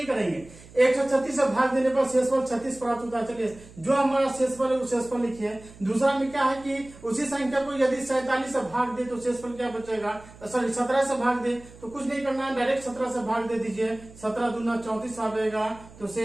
करेंगे। 136 से भाग देने पर शेषफल 36 प्राप्त होता है। चलिए, जो हमारा शेषफल है वो शेषफल लिखिए। दूसरा में क्या है कि उसी संख्या को यदि 47 से भाग दे तो शेषफल क्या बचेगा, सॉरी 17 से भाग दे तो कुछ नहीं करना है, डायरेक्ट 17 से भाग दे दीजिए। 17 दूना 34 आएगा, तो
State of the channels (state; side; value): noise; right; hum, 21 dB below the sound